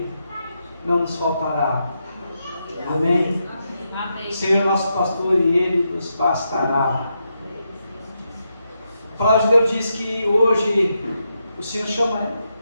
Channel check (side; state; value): both; inverted; correlation -0.83